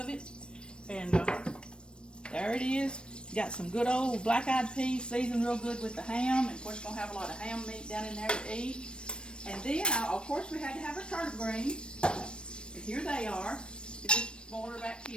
it, and there it is. Got some good old black-eyed peas, seasoned real good with the ham, and of course we're gonna have a lot of ham meat down in there to eat. And then, of course, we had to have our turnip greens, and here they are. Just boil back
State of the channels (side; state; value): right; late; 0.055 ms